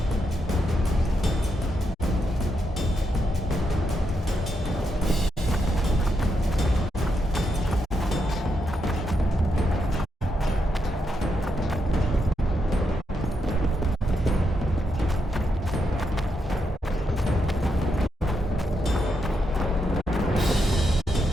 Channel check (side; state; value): both; normal; correlation 0.82